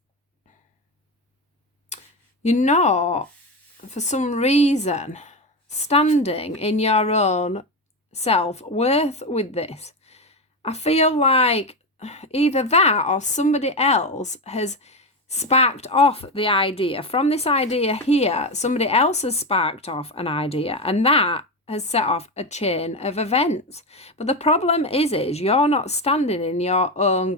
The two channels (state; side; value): normal; both; correlation 0.15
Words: for some reason standing in your own self-worth with this. I feel like either that or somebody else has sparked off the idea. From this idea here, somebody else has sparked off an idea, and that has set off a chain of events. But the problem is you're not standing in your own